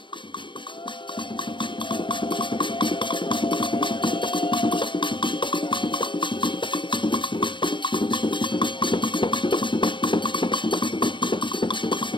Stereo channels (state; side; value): late; right; 0.23 ms